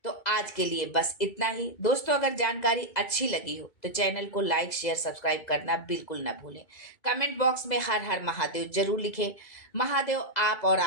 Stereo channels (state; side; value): late; right; 2.0 ms